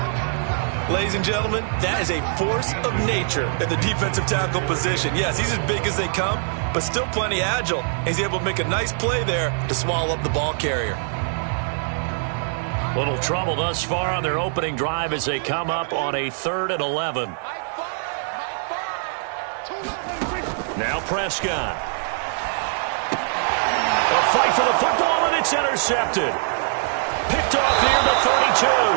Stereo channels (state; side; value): silent; left; 61 dB below the other